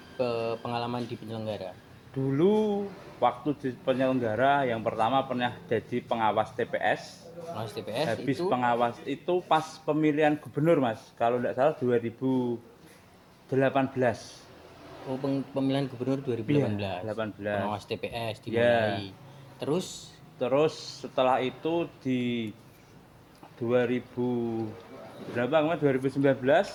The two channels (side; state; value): both; identical; correlation 1.00